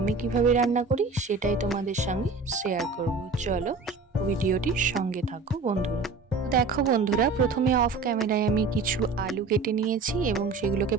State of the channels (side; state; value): left; quieter; 4.2 dB